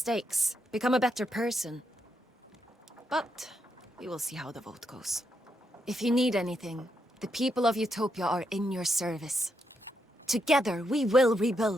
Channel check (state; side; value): normal; both; correlation 0.81